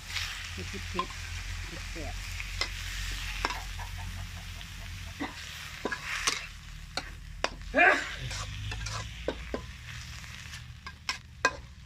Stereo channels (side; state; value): both; identical; correlation 1.00